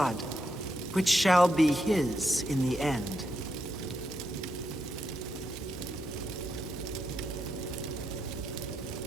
which shall be his in the end.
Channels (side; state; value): both; normal; correlation 0.83